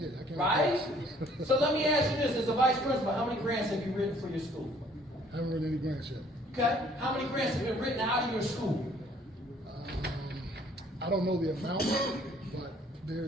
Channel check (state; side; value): normal; both; correlation 0.60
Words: it. I can't. Right? So let me ask you this: as a vice principal, how many grants have you written for your school? I haven't written any grants yet. Okay. How many grants have been written out of your school? I don't know the amount, but